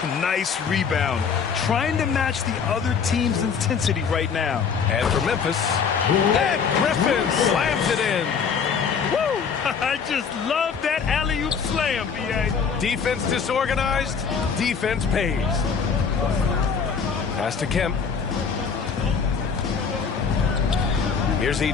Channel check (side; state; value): right; quieter; 6.2 dB